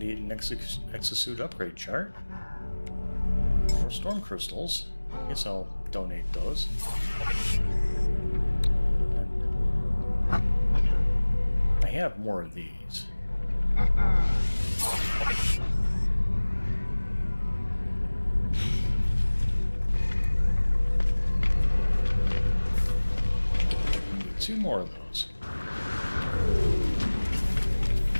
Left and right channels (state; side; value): inverted; both; correlation -1.00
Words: an exosuit upgrade chart. Or storm crystals. I guess I'll donate those. I have more of these. Need 2 more of those.